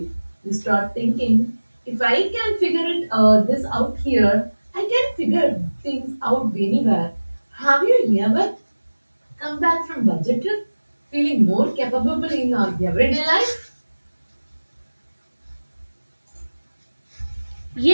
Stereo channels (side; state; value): both; inverted; correlation -1.00